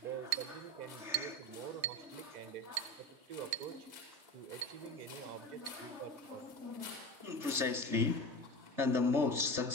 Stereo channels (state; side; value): late; left; 3.3 ms